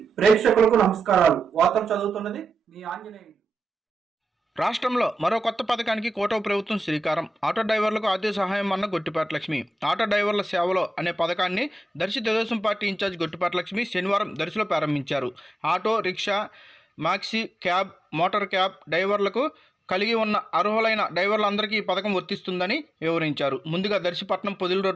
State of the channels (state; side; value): normal; both; correlation 0.92